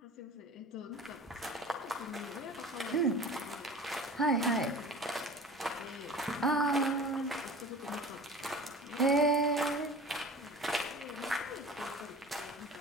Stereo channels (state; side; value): normal; both; correlation 0.39